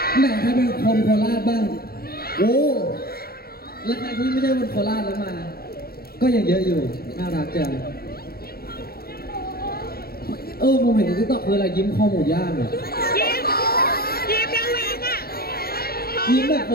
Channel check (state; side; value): late; right; 0.44 ms